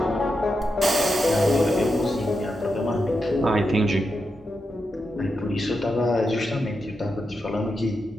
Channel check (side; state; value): both; normal; correlation 0.86